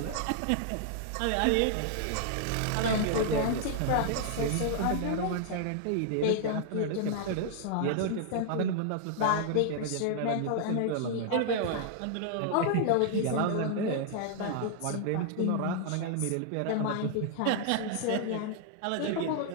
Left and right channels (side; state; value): both; different; correlation -0.01